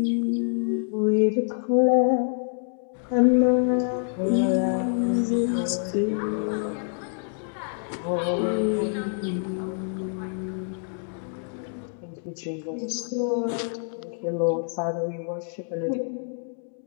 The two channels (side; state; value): right; silent; digital silence